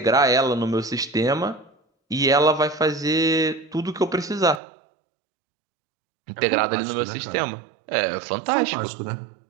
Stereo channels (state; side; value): drops out; left; at 4.6 s